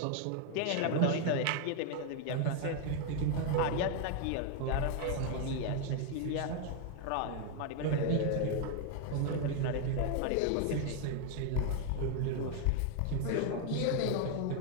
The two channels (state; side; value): different; both; correlation 0.01